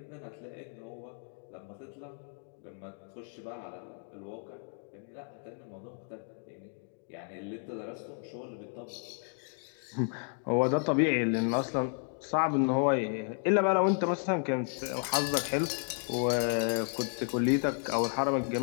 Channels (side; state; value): right; silent; 56 dB below the other